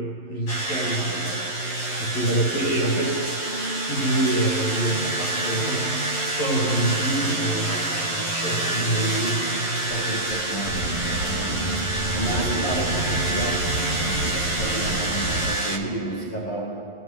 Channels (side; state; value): right; late; 11 ms